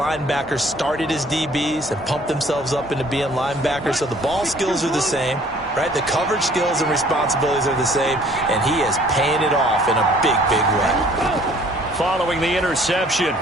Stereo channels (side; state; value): both; normal; correlation 0.56